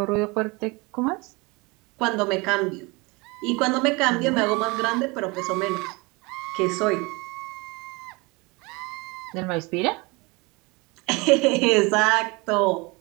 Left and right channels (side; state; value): left; quieter; 26.2 dB